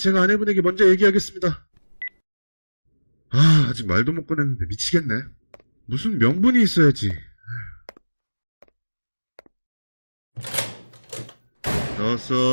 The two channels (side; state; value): both; inverted; correlation -1.00